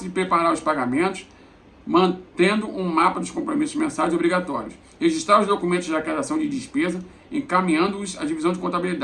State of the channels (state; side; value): identical; both; correlation 1.00